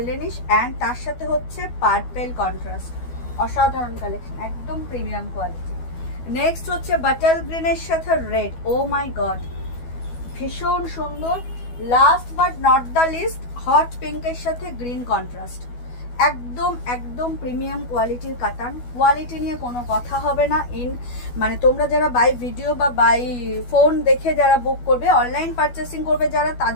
অ্যান্ড তার সাথে হচ্ছে পার্পেল কন্ট্রাস্ট। অসাধারণ কালেকশন, একদম প্রিমিয়াম কোয়ালিটি। নেক্সট হচ্ছে বাটার গ্রিনের সাথে রেড। ও মাই গড, ভীষণ সুন্দর। Last but not the least, hot পিঙ্কের সাথে গ্রিন কন্ট্রাস্ট। একদম একদম প্রিমিয়াম কোয়ালিটির কাতান। কোয়ালিটি নিয়ে কোনো কথা হবে না। মানে তোমরা যারা বাই ভিডিও বা বাই ফোন দেখে যারা বুক করবে, অনলাইন পারচেসিং করবে যারা,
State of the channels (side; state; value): right; late; 12 ms